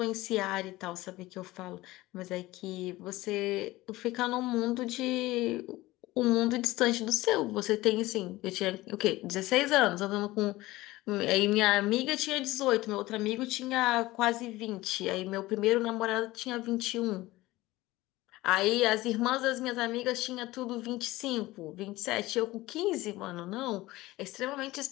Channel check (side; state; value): right; quieter; 18.6 dB